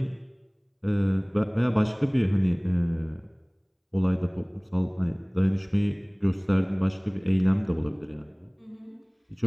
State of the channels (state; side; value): identical; both; correlation 1.00